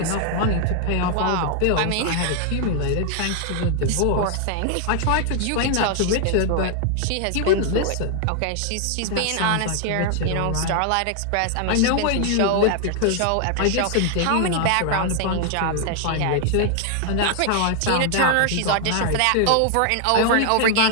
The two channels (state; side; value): different; both; correlation 0.00